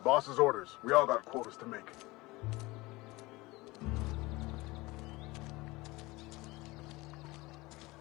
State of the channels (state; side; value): quieter; right; 21.6 dB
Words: Boss's orders. We all got quotas to make.